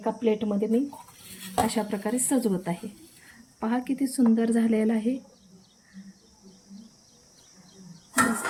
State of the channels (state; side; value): identical; both; correlation 1.00